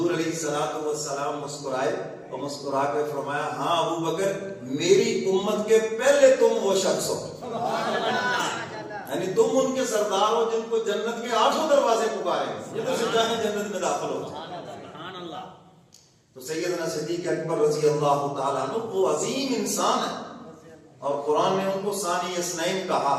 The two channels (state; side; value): identical; both; correlation 1.00